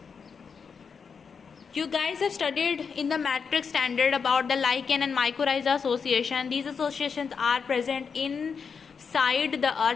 You guys have studied in the matrix standard about the lichen and mycorrhiza association. These associations are present inside the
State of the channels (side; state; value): right; quieter; 5.9 dB